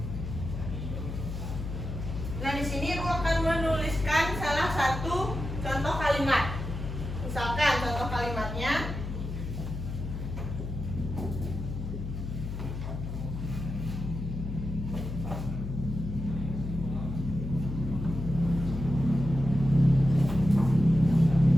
Nah, di sini Ibu akan menuliskan salah satu contoh kalimat. Misalkan contoh kalimatnya,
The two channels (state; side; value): noise; left; hum, 6 dB below the sound